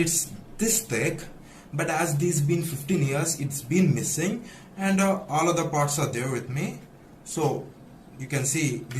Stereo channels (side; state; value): both; identical; correlation 1.00